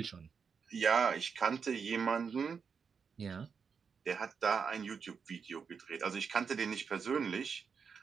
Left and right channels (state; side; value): quieter; left; 6.0 dB